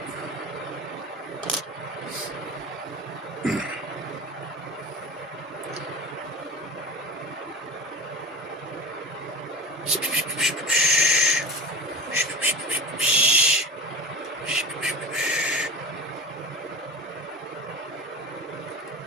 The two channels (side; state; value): both; normal; correlation 0.31